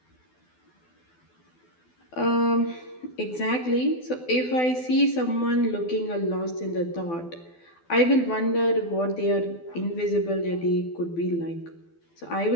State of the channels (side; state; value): right; late; 12 ms